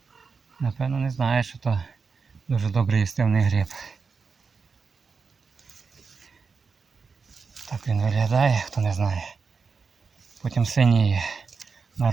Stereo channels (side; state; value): left; quieter; 5.1 dB